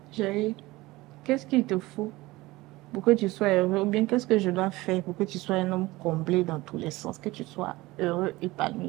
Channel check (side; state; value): left; quieter; 19.8 dB